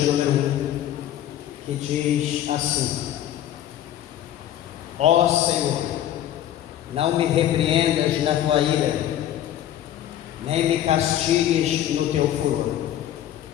número 1, que diz assim: Ó Senhor, não me repreendas na tua ira, nem me castigues no teu furor.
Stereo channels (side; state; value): right; quieter; 11.8 dB